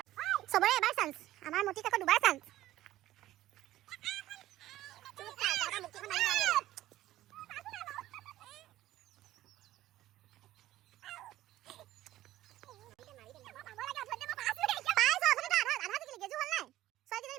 সবৰে এবাৰ চান্স আমাৰ মতি কাকো দুবাৰ চান্স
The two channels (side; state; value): left; quieter; 14.8 dB